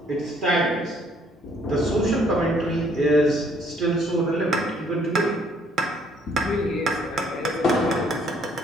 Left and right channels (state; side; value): normal; both; correlation 0.64